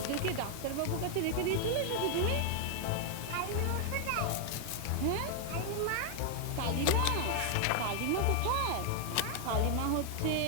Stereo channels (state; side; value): different; both; correlation 0.00